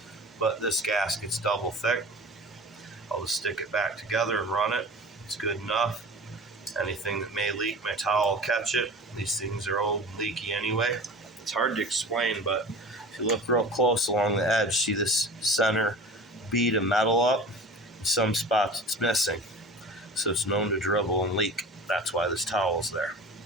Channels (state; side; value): normal; both; correlation 0.37